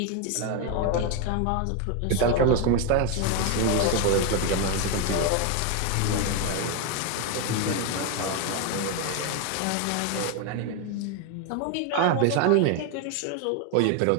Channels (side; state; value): both; different; correlation 0.01